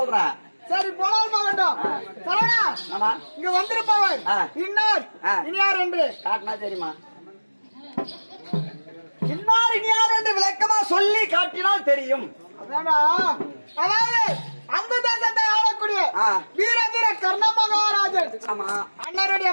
சரி போனால் போகட்டும். சரவணா இங்க வந்திருப்பவர் இன்னார் இனியார் என்று காட்டினா தெரியுமா? இன்னார் இனியார் என்று விளக்கமா சொல்லி காட்டினால் தெரியும். அதாவது அந்த தேசத்தை ஆளக்கூடிய வீரதீர கர்ண மகாராஜன் அண்ணருடைய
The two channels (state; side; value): inverted; both; correlation -1.00